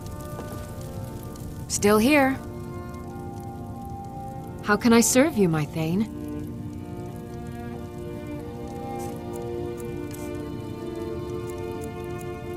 Still here. How can I serve you, my Thane?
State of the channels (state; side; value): identical; both; correlation 1.00